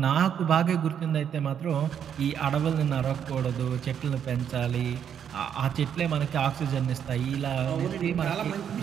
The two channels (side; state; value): left; quieter; 8.6 dB